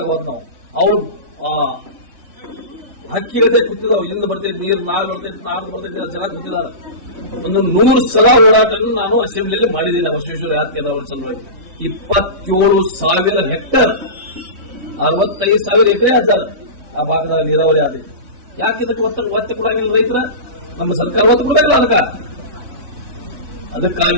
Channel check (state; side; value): late; left; 3.6 ms